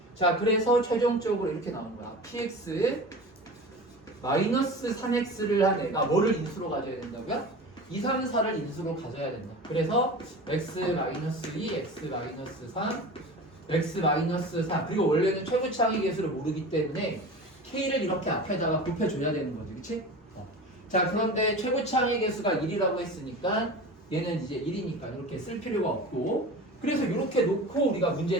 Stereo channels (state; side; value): normal; both; correlation 0.34